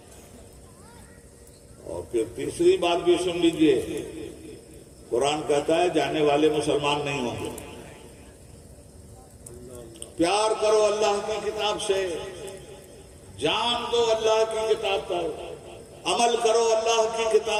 اور پھر تیسری بات بھی سن لیجئے، قرآن کہتا ہے جانے والے مسلمان نہیں ہوں گے. پیار کرو اللہ کی کتاب سے، جان دو اللہ کی کتاب پر، عمل کرو اللہ کی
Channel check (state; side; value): identical; both; correlation 1.00